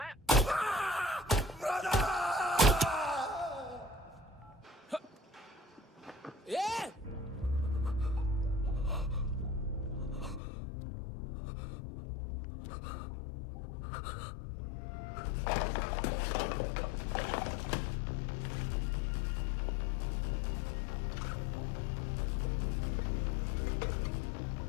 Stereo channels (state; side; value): drops out; right; at 10.4 s